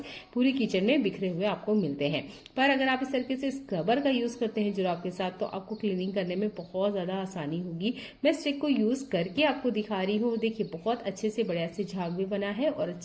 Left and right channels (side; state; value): both; identical; correlation 1.00